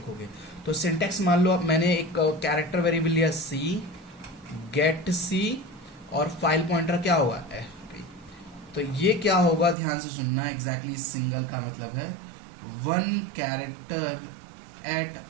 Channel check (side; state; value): left; drops out; at 9.8 s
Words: तो सिंटेक्स मान लो, अब मैंने एक कैरेक्टर वेरिएबल लिया सी, गेट सी, और फाइल पॉइंटर क्या होगा? एफपी। तो ये क्या होगा? ध्यान से सुनना, एग्जैक्टली सिंगल का मतलब है one character at